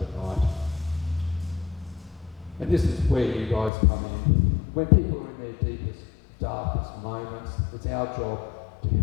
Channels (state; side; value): drops out; right; at 3.7 s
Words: And this is where you guys come in. When people are in their deepest, darkest moments, it's our job to